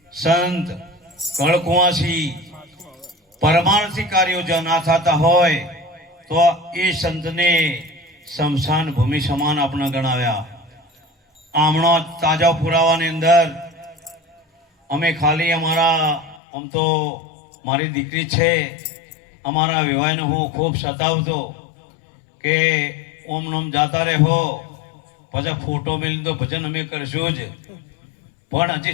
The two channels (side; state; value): right; drops out; at 16.4 s